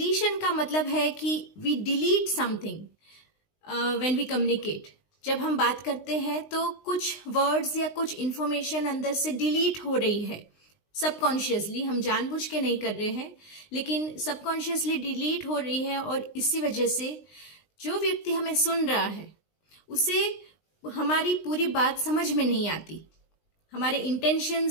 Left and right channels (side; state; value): right; late; 19 ms